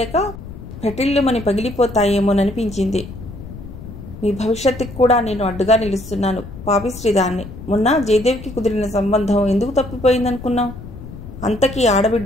పెటిల్లుమని పగిలిపోతాయేమోననిపించింది. మీ భవిష్యత్తుకి కూడా నేను అడ్డుగా నిలుస్తున్నాను. పాపిశ్రీదాన్ని. మొన్న జయదేవికి కుదిరిన సంబంధం ఎందుకు తప్పిపోయిందనుకున్నావు? అంతకీ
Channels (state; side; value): noise; left; rumble, 13 dB below the sound